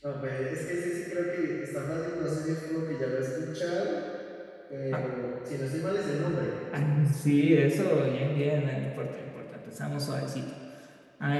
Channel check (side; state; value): both; identical; correlation 1.00